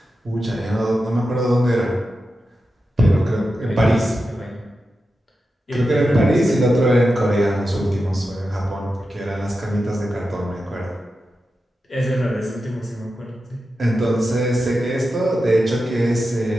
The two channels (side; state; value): both; normal; correlation 0.91